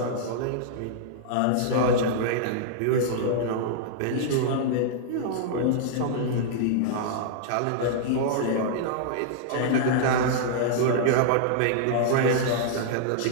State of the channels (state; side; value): different; both; correlation -0.01